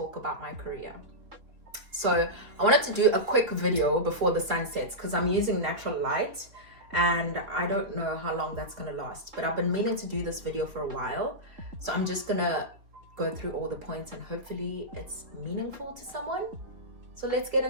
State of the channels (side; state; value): left; late; 3.6 ms